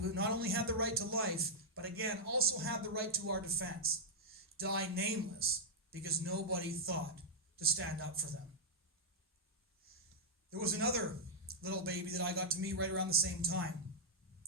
not only had the right to life, but again, also had the right to our defense, die nameless because nobody thought to stand up for them. There was another little baby that I got to meet right around the same time.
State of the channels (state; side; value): normal; both; correlation -0.08